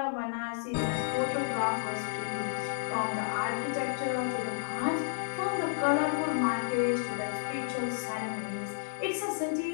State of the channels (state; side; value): silent; right; digital silence